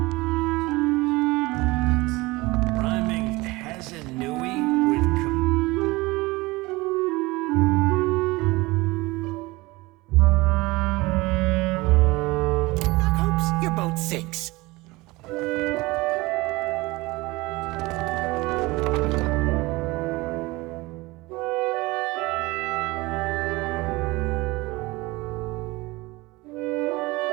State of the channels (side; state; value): left; quieter; 21.9 dB